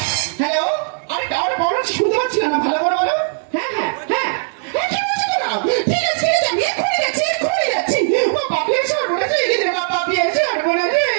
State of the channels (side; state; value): left; silent; digital silence